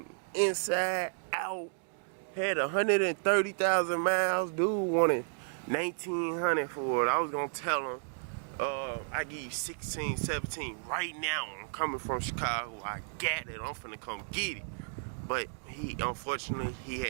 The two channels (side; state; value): left; silent; digital silence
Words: inside, out. Had 130,000 miles. Dude wanted 1900 for it. I was gonna tell him, I give you 16, 17 right now. I'm coming from Chicago. I got it. I'm finna come get it. But unfortunately, he